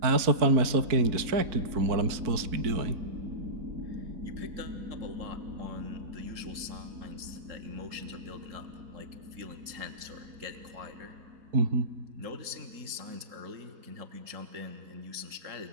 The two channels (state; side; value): late; left; 4.5 ms